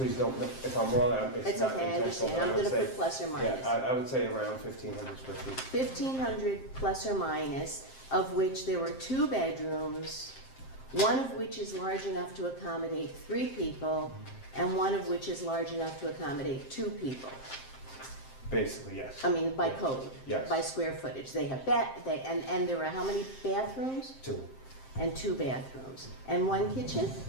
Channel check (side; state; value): right; late; 7.6 ms